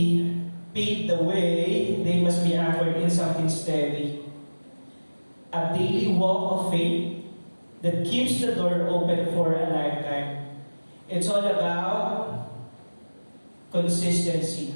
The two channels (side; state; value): both; inverted; correlation -1.00